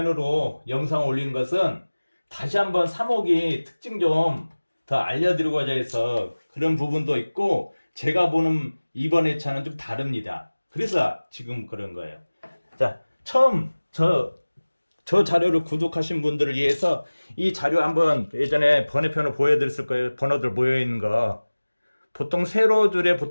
영상 올린 것은 다시 한번 3호기 특징 좀 더 알려드리고자 해서 그런 부분도 있고, 제가 보는 이번 회차는 좀 다릅니다. 그래서 지금 그런 거예요. 자, 처음 저 자료를 구독하신 분들을 위해서 이 자료 한번 예전에 번외편으로 보여드렸을 거예요. 번호들 모여있는 거. 보통 세로줄에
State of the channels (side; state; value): both; inverted; correlation -1.00